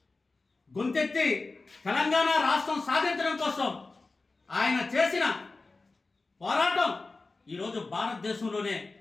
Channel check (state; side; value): quieter; right; 3.6 dB